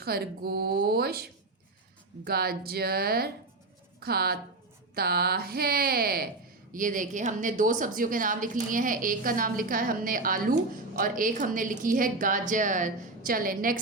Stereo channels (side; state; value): left; quieter; 3.3 dB